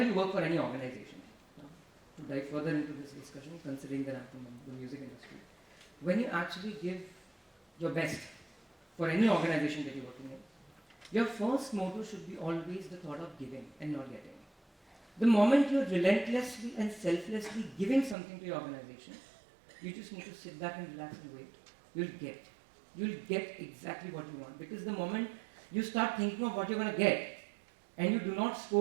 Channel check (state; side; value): drops out; left; at 18.2 s